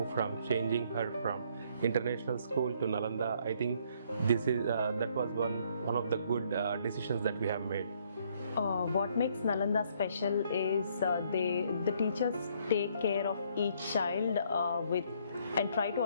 from changing her from international school to Nalanda. I think this is that was one of the good decisions that we have made. What makes Nalanda special is the teachers take care of each child with and try to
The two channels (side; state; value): both; inverted; correlation -0.66